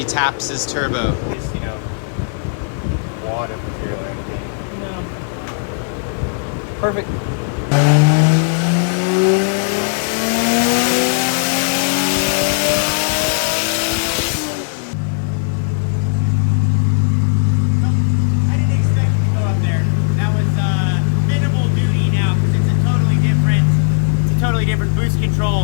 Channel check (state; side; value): silent; right; digital silence